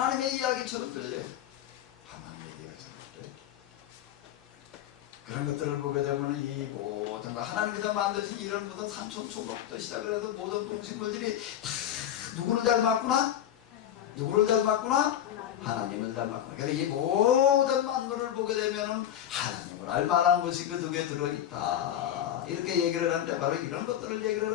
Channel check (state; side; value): quieter; right; 10.8 dB